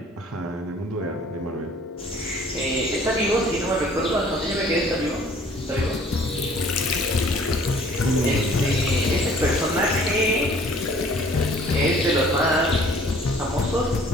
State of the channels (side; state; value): both; normal; correlation 0.54